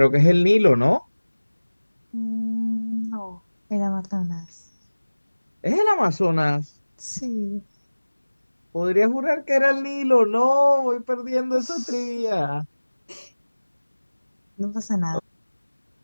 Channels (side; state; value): both; inverted; correlation -1.00